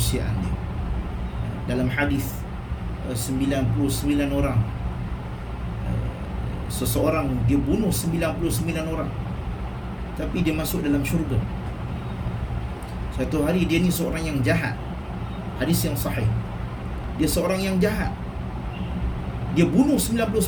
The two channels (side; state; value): both; identical; correlation 1.00